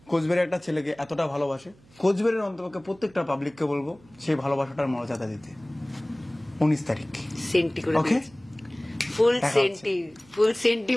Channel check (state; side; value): noise; right; hum, 28 dB below the sound